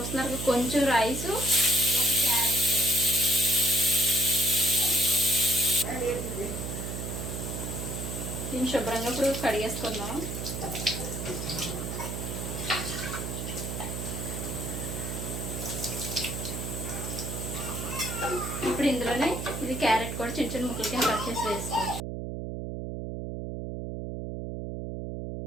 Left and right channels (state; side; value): noise; right; hum, 5 dB below the sound